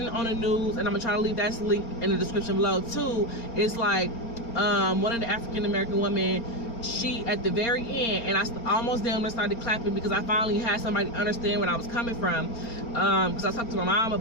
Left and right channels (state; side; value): late; right; 4.3 ms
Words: it on the news, and I'm gonna try to leave that link in the description below too, it's like one of the African American women, she at the very end, and I almost damn started clapping, because I finally had somebody understand where I was coming from, because I talked to my mom